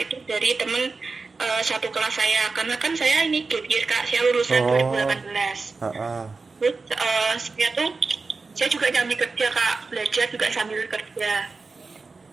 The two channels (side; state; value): left; quieter; 4.1 dB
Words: itu dari temen satu kelas saya, karena kan saya ini gap year Kak, saya lulusan Oh, 2018. ah, ah. Terus saya juga sambil kerja Kak, belajar juga sambil kerja.